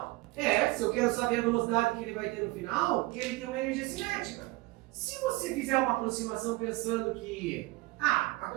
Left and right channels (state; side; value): quieter; left; 21.5 dB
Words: Se eu quero saber a velocidade que ele vai ter no final, ele tem uma energia cinética. Se você fizer uma aproximação pensando que a